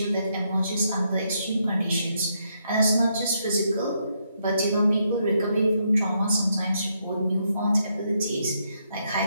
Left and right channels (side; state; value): both; inverted; correlation -0.77